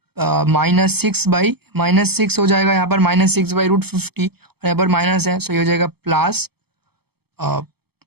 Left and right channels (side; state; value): left; late; 0.96 ms